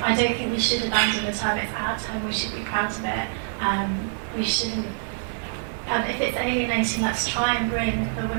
don't think we should abandon the term, it's our term, we should be proud of it. We shouldn't, if it's alienating, let's try and bring the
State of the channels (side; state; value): left; silent; digital silence